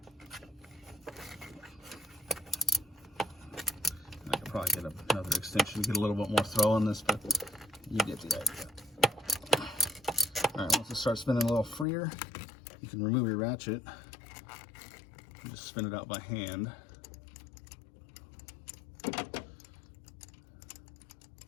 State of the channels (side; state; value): right; drops out; at 11.9 s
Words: I could probably get another extension to get a little bit more throw on this, but you get the idea. All right, once it starts spinning a little freer, you can remove your ratchet and just spin it out by hand.